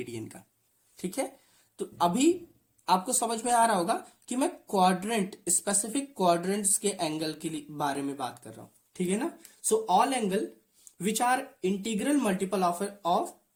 का। ठीक है, तो अभी आपको समझ में आ रहा होगा कि मैं क्वाड्रेंट, स्पेसिफिक क्वाड्रेंट्स के एंगल के बारे में बात कर रहा हूं। ठीक है ना, so all angle which are integral multiple of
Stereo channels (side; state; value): both; identical; correlation 1.00